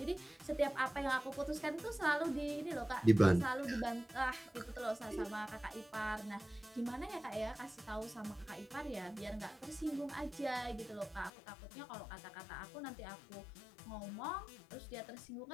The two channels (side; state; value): right; drops out; at 11.3 s